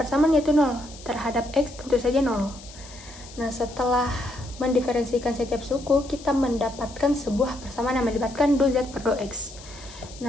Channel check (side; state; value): left; noise; hiss, 18 dB below the sound